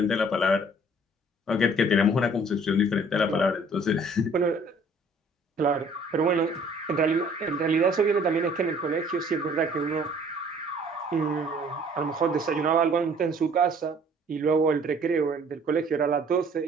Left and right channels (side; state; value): both; normal; correlation 0.56